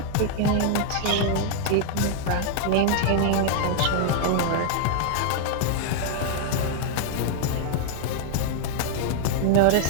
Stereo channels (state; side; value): different; both; correlation -0.01